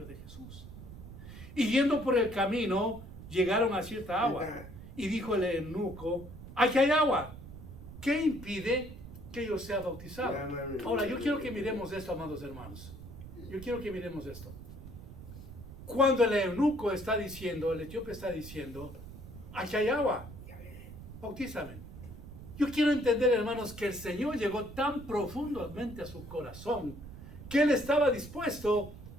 de Jesús. Y yendo por el camino, llegaron a cierta agua. Y dijo el eunuco, aquí hay agua. ¿Qué impide que yo sea bautizado? Ahora, yo quiero que miremos esto, amados hermanos. Yo quiero que miremos esto. Cuando el eunuco está diciendo, el etíope está diciendo, aquí hay agua, bautízame. Yo quiero entender, hermanos, que el Señor llegó tan profundamente a su corazón que Él estaba dispuesto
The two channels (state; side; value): noise; right; rumble, 14 dB below the sound